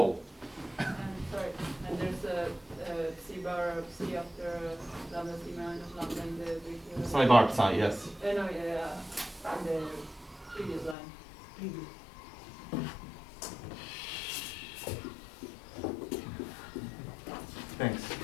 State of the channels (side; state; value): right; drops out; at 11.0 s